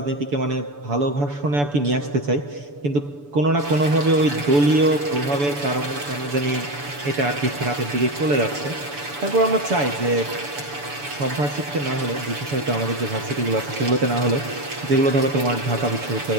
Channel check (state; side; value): late; left; 6.9 ms